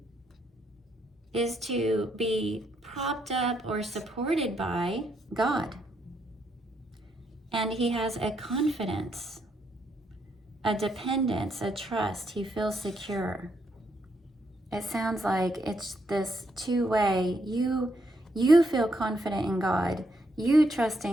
is to be propped up or supported by God. And he has a confidence, a dependence, a trust. He feels secure. It sounds like it's this two-way. You feel confident in God. You trust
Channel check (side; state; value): both; normal; correlation 0.76